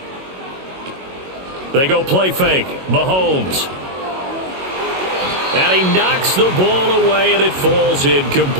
They go play fake. Mahomes. And he knocks the ball away, and it falls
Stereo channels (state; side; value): late; left; 22 ms